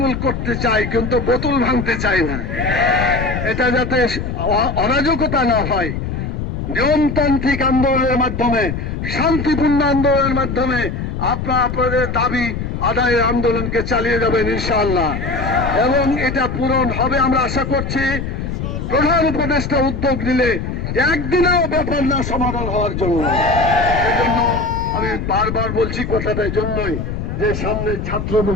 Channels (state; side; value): noise; left; rumble, 4 dB below the sound